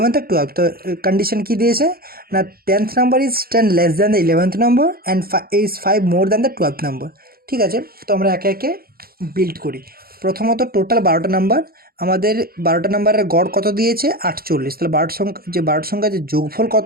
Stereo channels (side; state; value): left; late; 0.44 ms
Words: আর 12th। তো কন্ডিশন কী দিয়েছে না 10th number is 10 less than the 11th number and is 5 more than the 12th number. ঠিক আছে, তো আমরা একে একে বিল্ড করি। প্রথমত টোটাল 12টা নাম্বার, আমাদের 12টা নাম্বারের গড় কত দিয়েছে 48। তাহলে 12টা সংখ্যা যে যোগফল